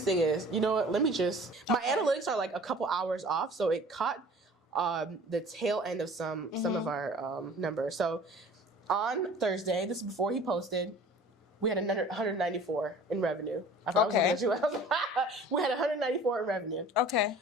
thing is, you know what? My analytics are like a couple hours off, so it caught the tail end of some of our numbers. So on Thursday, this is before he posted, we had another 194 in revenue. I thought I was looking at you. We had 194 in revenue. Okay.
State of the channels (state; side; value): normal; both; correlation 0.46